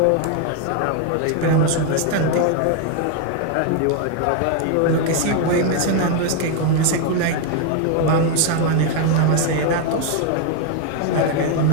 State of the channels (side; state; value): both; different; correlation 0.01